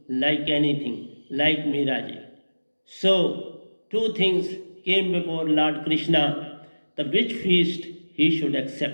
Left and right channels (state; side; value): inverted; both; correlation -1.00